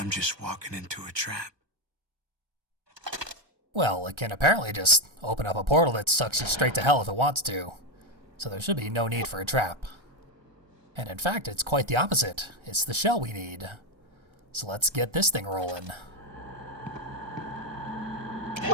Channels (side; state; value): left; late; 1.3 ms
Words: just walking into a trap. Well, it can apparently just open up a portal that sucks you straight to hell if it wants to. So there should be no need for a trap. And in fact, it's quite the opposite. It's the shell we need. So let's get this thing rolling.